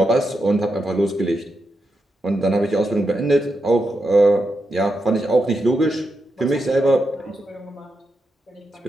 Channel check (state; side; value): normal; both; correlation 0.85